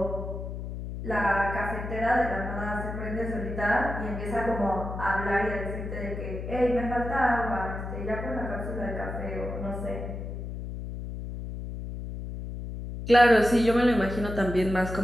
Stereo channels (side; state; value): left; noise; hum, 7 dB below the sound